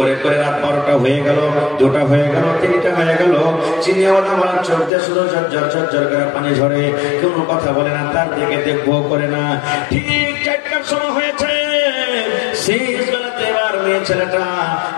করে রাত 12টা হয়ে গেল, 2টা হয়ে গেল, 3টা হয়ে গেল, চিনিওয়ালা চোখ দিয়ে শুধু ঝরঝর ঝরঝর করে পানি ঝরে, কোনো কথা বলে না, তার দিকে দেখবো করে না। ঠিক 4টার সময় হয়েছে, শেষ বেলাতে এবার মেয়ে ছেলেটা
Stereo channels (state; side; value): drops out; right; at 4.9 s